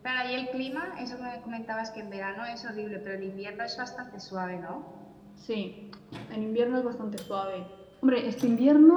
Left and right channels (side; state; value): both; identical; correlation 1.00